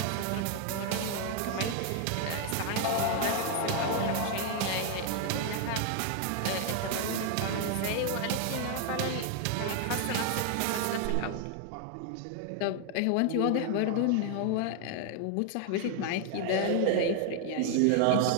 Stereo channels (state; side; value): different; both; correlation 0.00